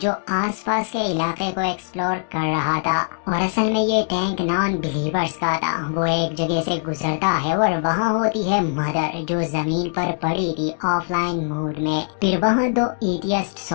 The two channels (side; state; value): right; silent; digital silence